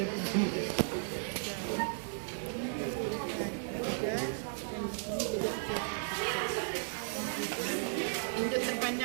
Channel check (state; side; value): silent; left; digital silence